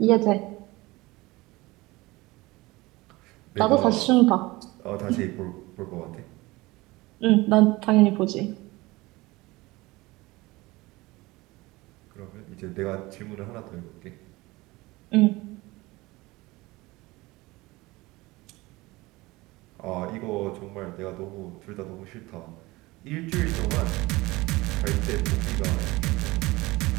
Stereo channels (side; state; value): left; quieter; 21.2 dB